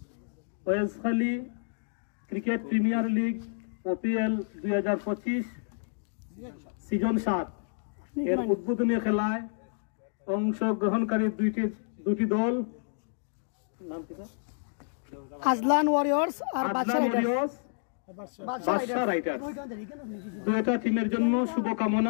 ওয়েলসখালী cricket premier league ওপিএল 2025 season 7 এর উদ্বোধনী খেলায় অংশগ্রহণকারী দুটি দল নাম কি? আজলান ওয়ারিয়র্স আর বাদশা রাইডার্স। দুইটা টিমের জন্য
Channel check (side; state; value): right; silent; digital silence